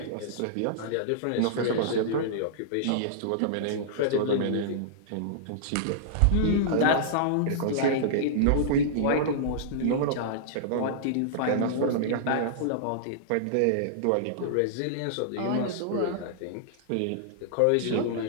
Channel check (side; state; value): both; different; correlation -0.02